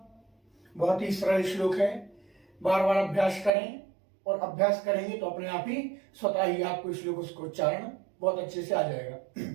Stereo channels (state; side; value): drops out; left; at 3.5 s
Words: बहुत ही सरल श्लोक है, बार बार अभ्यास करें और अभ्यास करेंगे तो अपने आप ही स्वतः ही आपको श्लोक उसका उच्चारण बहुत अच्छे से आ जाएगा।